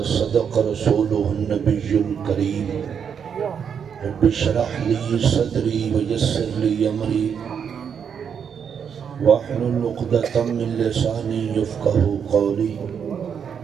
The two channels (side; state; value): left; quieter; 7.4 dB